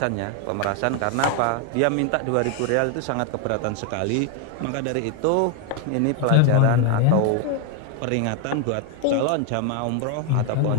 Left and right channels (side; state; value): both; different; correlation 0.01